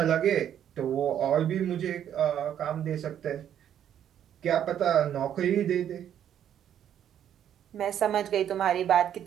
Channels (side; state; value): left; quieter; 10.0 dB